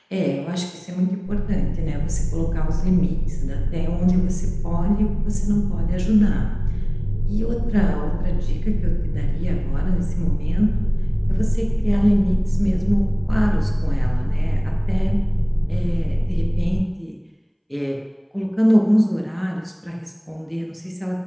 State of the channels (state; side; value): identical; both; correlation 1.00